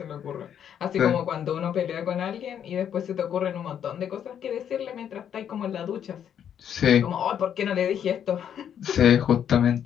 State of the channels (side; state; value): right; quieter; 9.1 dB